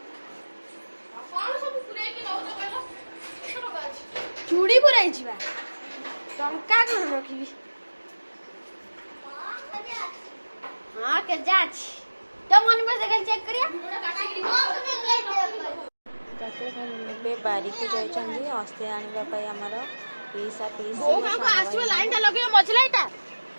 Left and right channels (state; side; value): inverted; both; correlation -1.00